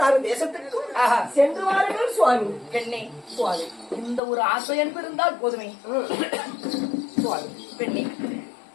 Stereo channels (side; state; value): right; drops out; at 4.2 s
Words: தேசத்துக்கு சென்று வாருங்கள் சுவாமி. பெண்ணே சுவாமி, இந்த ஒரு ஆசை என்பது இருந்தால் போதுமே. சுவாமி பெண்ணே,